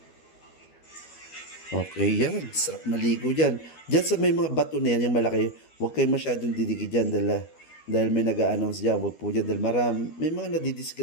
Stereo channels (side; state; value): right; late; 12 ms